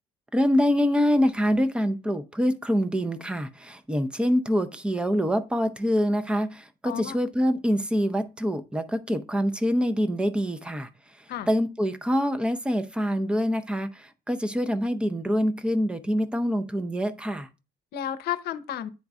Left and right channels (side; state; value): both; normal; correlation 0.92